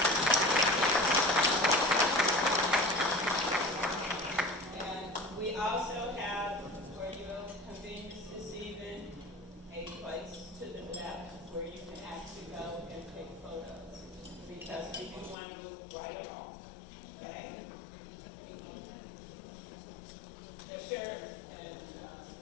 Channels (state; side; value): drops out; right; at 15.4 s